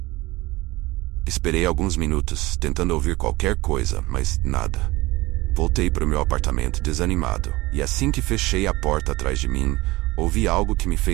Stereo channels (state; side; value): quieter; left; 20.6 dB